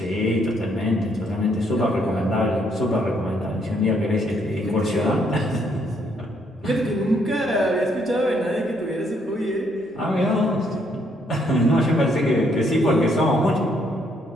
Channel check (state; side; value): normal; both; correlation 0.71